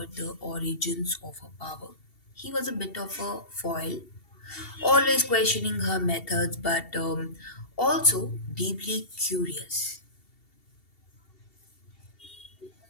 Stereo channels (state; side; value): late; right; 2.7 ms